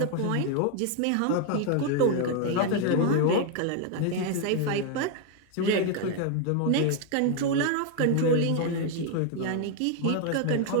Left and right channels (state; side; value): different; both; correlation 0.01